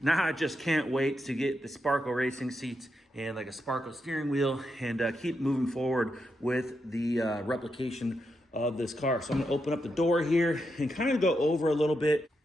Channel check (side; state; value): both; normal; correlation 0.84